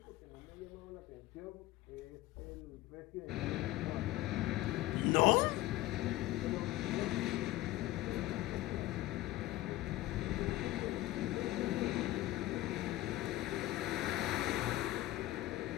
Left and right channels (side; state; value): right; quieter; 16.8 dB